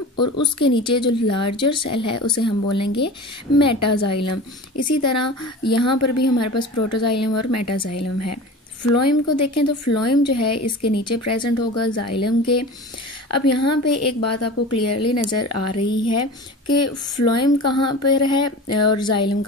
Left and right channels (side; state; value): both; normal; correlation 0.34